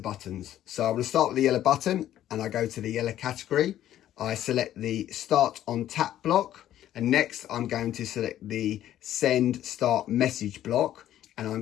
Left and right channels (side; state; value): right; quieter; 12.2 dB